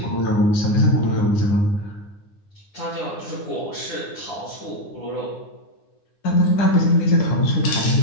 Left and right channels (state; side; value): late; right; 9.8 ms